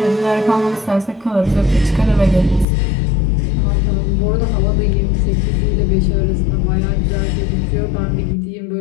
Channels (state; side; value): drops out; right; at 2.7 s